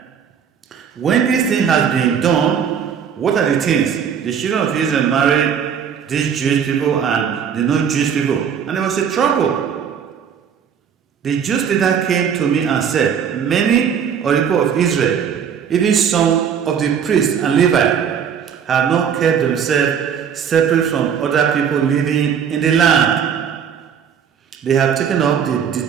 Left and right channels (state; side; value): quieter; left; 7.7 dB